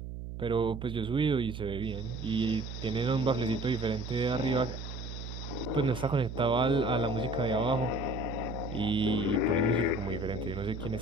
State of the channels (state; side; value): noise; right; hum, 8 dB below the sound